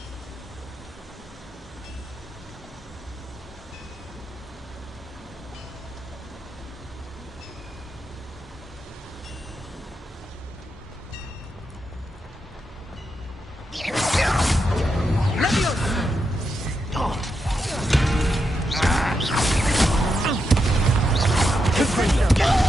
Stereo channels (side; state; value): both; normal; correlation 0.84